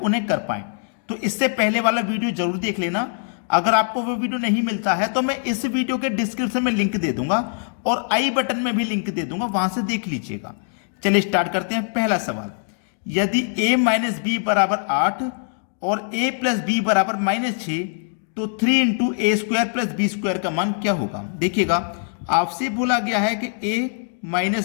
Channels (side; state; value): right; silent; digital silence